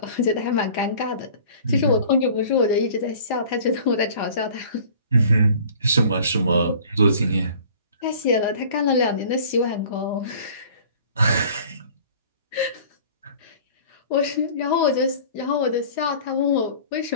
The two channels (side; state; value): both; inverted; correlation -0.48